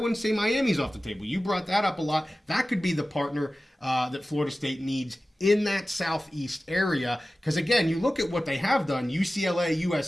say Miami's off the table. You brought that up a lot. That could be the partner that Florida State needs in that Southeast area. Because, again, you look at what they have done, UCLA,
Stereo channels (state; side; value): normal; both; correlation 0.96